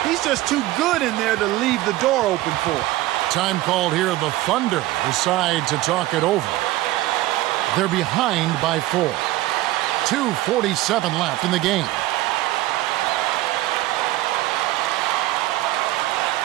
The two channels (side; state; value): left; quieter; 17.0 dB